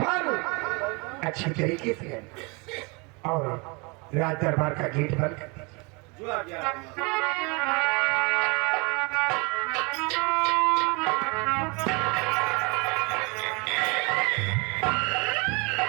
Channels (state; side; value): quieter; left; 29.3 dB